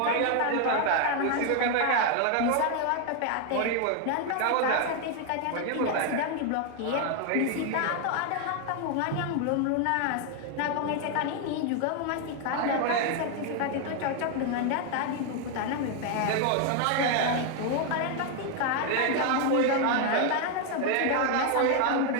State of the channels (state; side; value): different; both; correlation 0.01